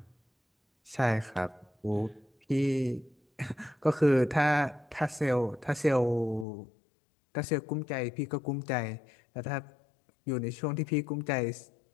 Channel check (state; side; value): drops out; right; at 6.5 s